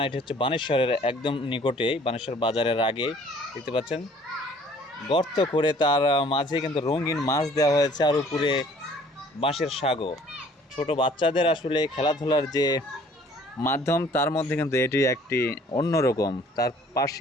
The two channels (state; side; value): normal; both; correlation 0.55